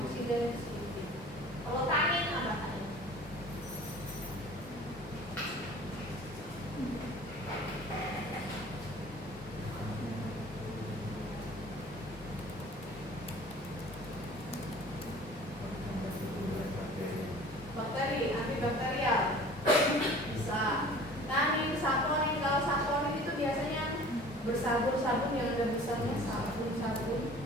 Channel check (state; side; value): normal; both; correlation 0.45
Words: sedikit. Kalau tanin apa tanin? Bakteri, antibakterial bisa. Tanin, saponin, kalau saponin itu biasanya bersabun-sabun yang ada besarnya sabun. Saponin